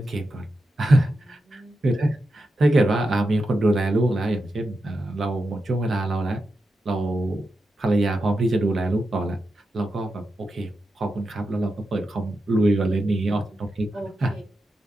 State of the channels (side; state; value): both; normal; correlation 0.89